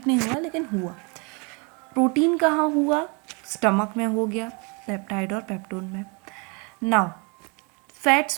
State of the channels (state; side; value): quieter; left; 32.1 dB